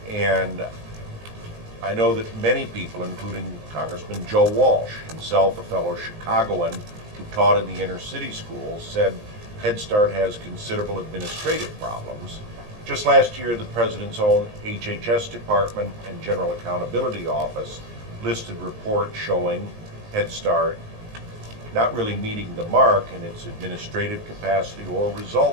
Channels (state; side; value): late; left; 19 ms